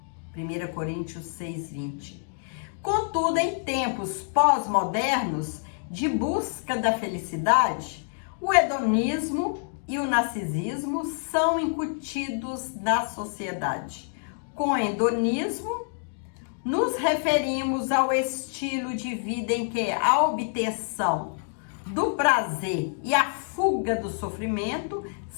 1 Coríntios 6, 20. Contudo, em tempos pós-modernos de busca da felicidade, o hedonismo e o narcisismo são incutidos na sociedade. Com hedonismo, nos referimos ao estilo de vida em que a obtenção do prazer e a fuga do sofrimento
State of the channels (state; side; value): silent; right; digital silence